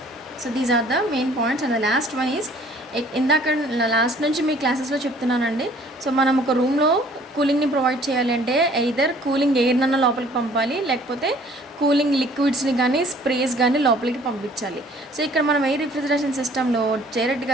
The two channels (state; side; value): normal; both; correlation 0.55